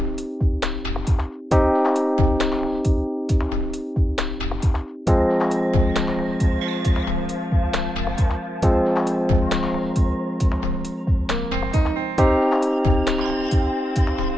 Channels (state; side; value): normal; both; correlation 0.86